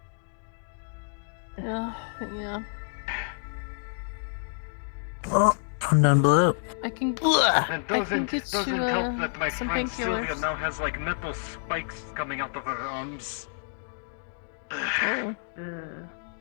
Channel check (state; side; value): silent; right; digital silence